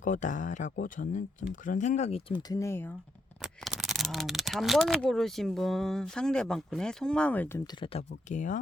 저는 좀 그런 생각이 좀 드네요. 다음 3번을 고르신 분 상대방 분의 속마음을 좀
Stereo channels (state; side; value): normal; both; correlation 0.79